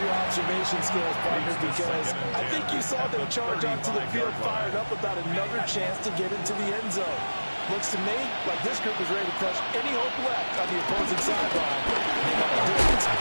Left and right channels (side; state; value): both; inverted; correlation -1.00